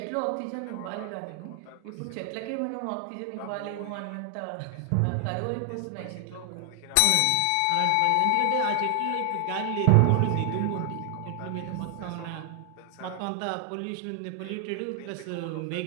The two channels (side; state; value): both; different; correlation 0.00